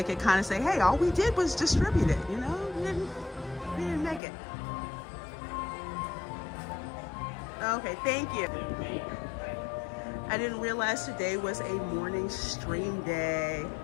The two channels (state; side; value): drops out; right; at 4.2 s